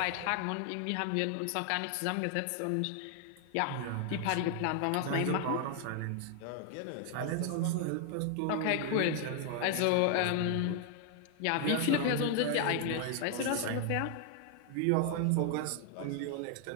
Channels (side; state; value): both; different; correlation 0.00